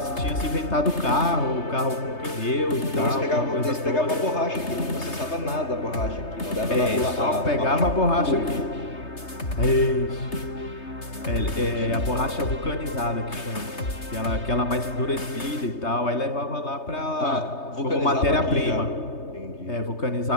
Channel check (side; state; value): right; late; 3.3 ms